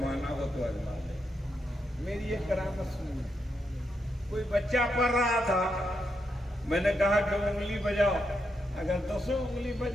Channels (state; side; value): normal; both; correlation 0.82